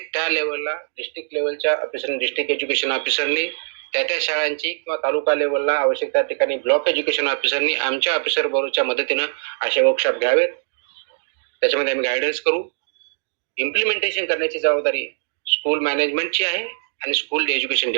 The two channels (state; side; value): silent; left; digital silence